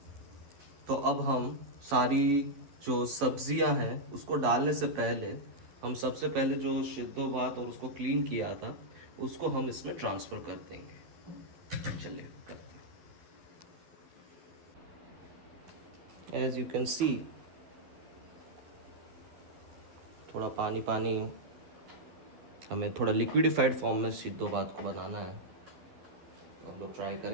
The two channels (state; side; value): late; left; 12 ms